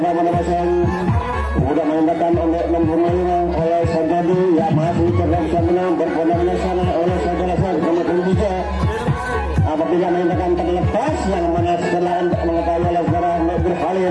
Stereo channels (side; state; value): both; identical; correlation 1.00